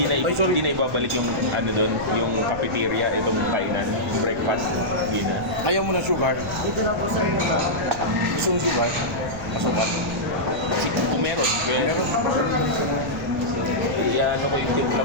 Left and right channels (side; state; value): right; noise; rumble, 14 dB below the sound